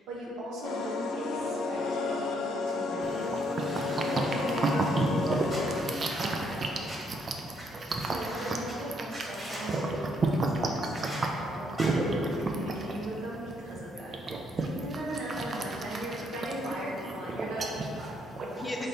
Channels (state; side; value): normal; both; correlation 0.72